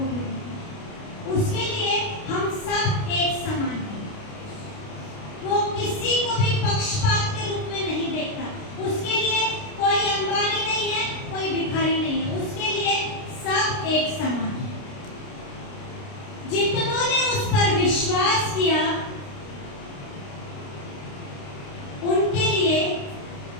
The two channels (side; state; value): right; late; 29 ms